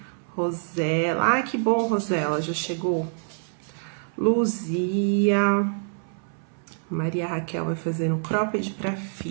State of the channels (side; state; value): left; silent; 61 dB below the other